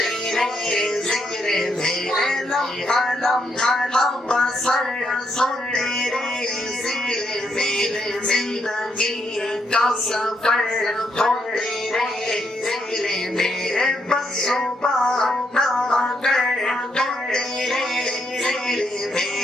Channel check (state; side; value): normal; both; correlation 0.77